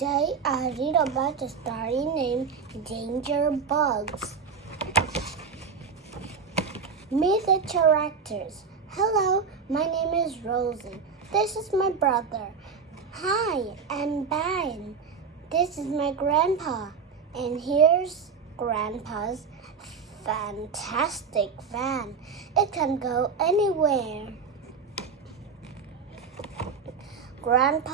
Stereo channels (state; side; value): quieter; left; 5.6 dB